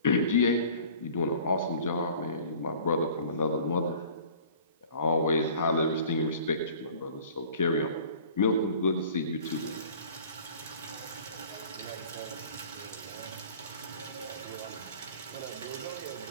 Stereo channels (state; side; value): inverted; both; correlation -0.47